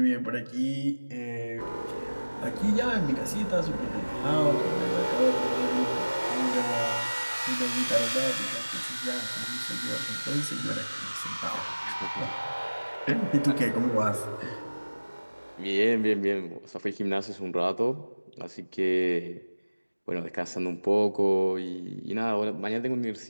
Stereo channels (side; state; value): both; inverted; correlation -1.00